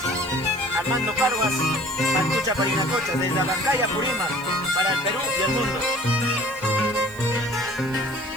Armando Parvas, Pantucha Parinacocha, desde Abancaya, Purímac, para el Perú y el mundo.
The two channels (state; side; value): noise; right; hiss, 23 dB below the sound